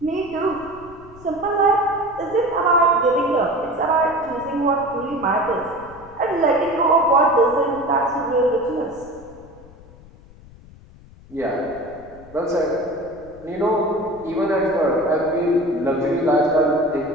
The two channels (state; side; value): noise; left; rumble, 22 dB below the sound